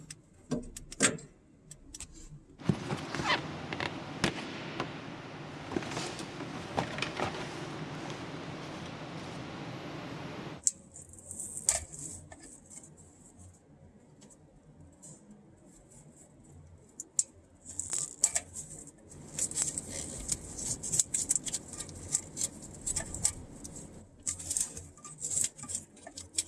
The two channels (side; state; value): both; identical; correlation 1.00